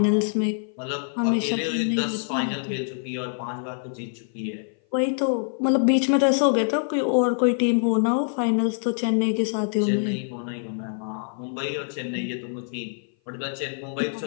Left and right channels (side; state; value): right; silent; 56 dB below the other